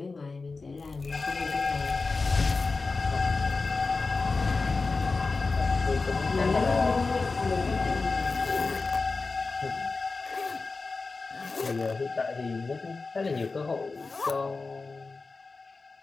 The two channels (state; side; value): quieter; right; 4.0 dB